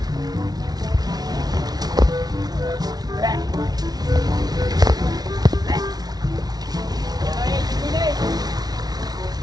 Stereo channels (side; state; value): left; late; 0.19 ms